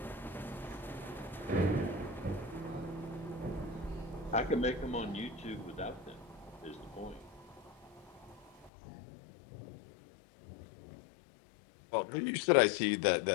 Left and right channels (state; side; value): drops out; right; at 8.7 s